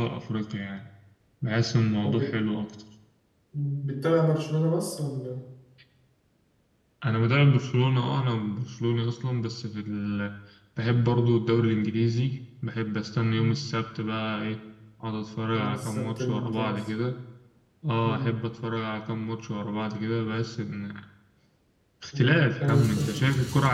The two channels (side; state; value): both; identical; correlation 1.00